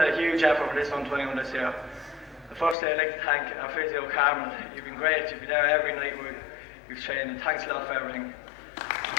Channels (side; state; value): right; drops out; at 2.8 s